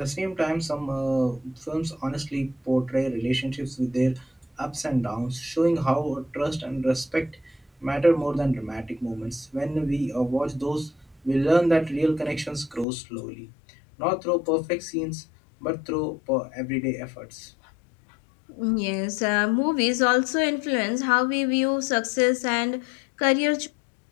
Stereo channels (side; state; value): right; drops out; at 12.9 s